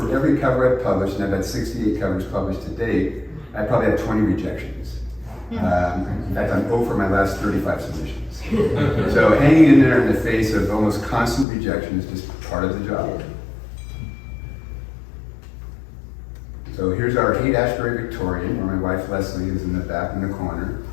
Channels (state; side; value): drops out; right; at 11.5 s